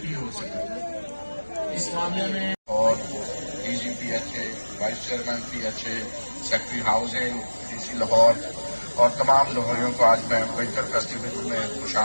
ہو سکے اس معاملے میں. اور DG PHA vice chairman PHA secretary housing DC Lahore اور تمام لاہوریوں کو آج میں ونٹر فیسٹیول میں خوش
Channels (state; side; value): inverted; both; correlation -1.00